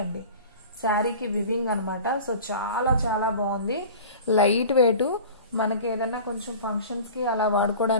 అండి, శారీకి వివింగ్ అనమాట. సో చాలా చాలా బాగుంది. లైట్ వెయిట్, మనకి ఏదన్నా కొంచెం ఫంక్షన్స్ కి అలా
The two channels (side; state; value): both; inverted; correlation -0.38